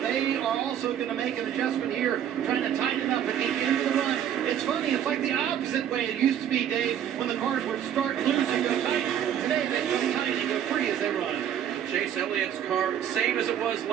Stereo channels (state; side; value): quieter; left; 9.8 dB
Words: are also going to make an adjustment here, trying to tighten up at the end of the run. It's funny, it's like the opposite way it used to be, Dave, when the cars would start loose and go tight. Today they go tight and go free as they run. Chase Elliott's car, same as it was